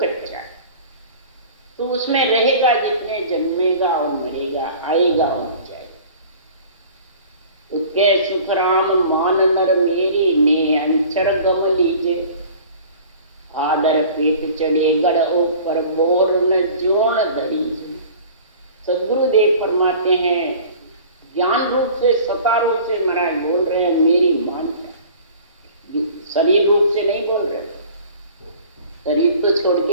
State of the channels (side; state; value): both; inverted; correlation -0.45